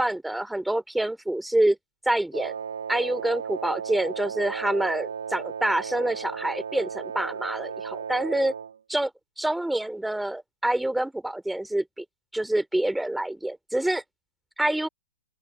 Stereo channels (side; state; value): both; normal; correlation 0.89